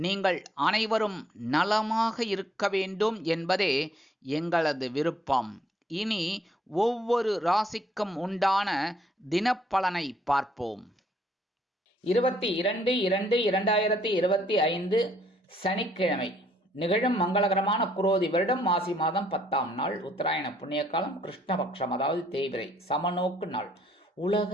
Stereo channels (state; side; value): normal; both; correlation 0.67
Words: அனைவரும் நலமாக இருக்க வேண்டும் என்பதே எங்களது விருப்பம். இனி ஒவ்வொரு ராசிக்கும் உண்டான தினப்பலனை பார்ப்போம். 22/2/2025 சனிக்கிழமை நிகழும் மங்களகரமான குரோதி வருடம் மாசி மாதம் 10ஆம் நாள், உத்தராயண புண்ணிய காலம், கிருஷ்ணபக்ஷம், அதாவது தேய்பிறை, சமநோக்கு நாள், உலக